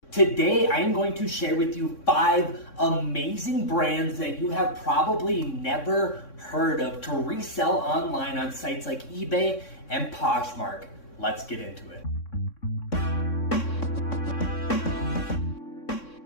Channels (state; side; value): late; right; 3.6 ms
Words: Today, I am going to share with you 5 amazing brands that you have probably never heard of to resell online on sites like eBay and Poshmark. Let's get into it.